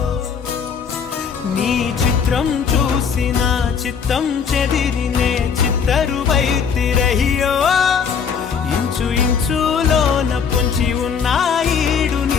నీ చిత్రం చూసి నా చిత్తం చెదిరినే చిత్తరువైతిరయ్యో ఇంచు ఇంచులోన పొంచి ఉన్న ఈడు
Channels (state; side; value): quieter; right; 6.7 dB